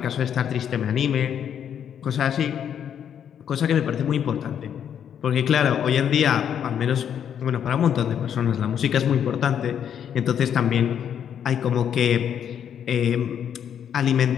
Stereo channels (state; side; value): quieter; right; 8.8 dB